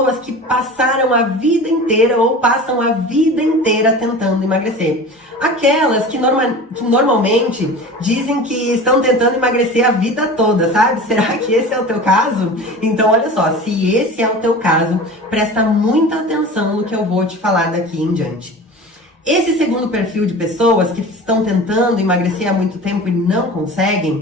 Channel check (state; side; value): normal; both; correlation 0.36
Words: que passaram a vida inteira ou passam a vida inteira tentando emagrecer. Aquelas que normalmente dizem que estão tentando emagrecer a vida toda, sabe? Será que esse é o teu caso? Então, olha só, se esse é o teu caso, presta muita atenção no que eu vou te falar daqui em diante. Esse segundo perfil de pessoas que estão tentando emagrecer há muito tempo e não